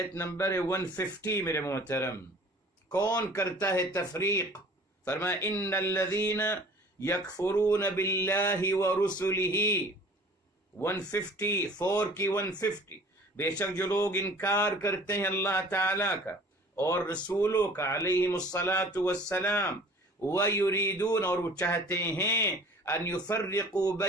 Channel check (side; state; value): both; normal; correlation 0.48